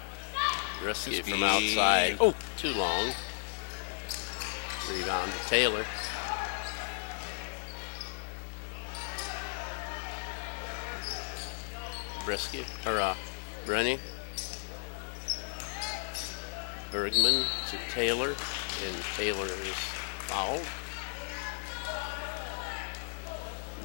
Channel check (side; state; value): right; silent; digital silence